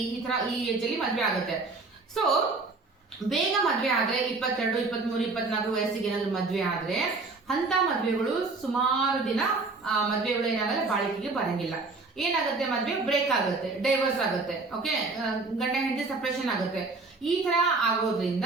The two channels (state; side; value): quieter; left; 3.7 dB